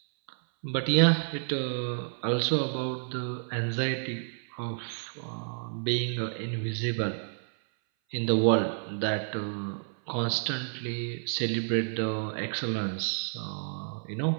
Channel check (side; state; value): left; silent; 58 dB below the other